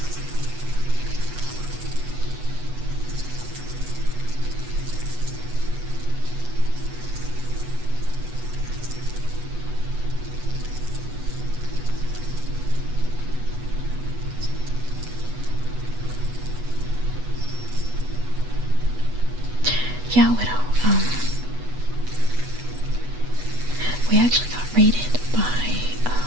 Yeah, Widow. We actually got raided by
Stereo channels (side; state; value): left; late; 8.1 ms